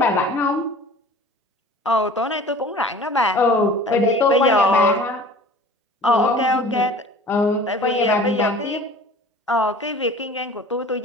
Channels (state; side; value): normal; both; correlation 0.44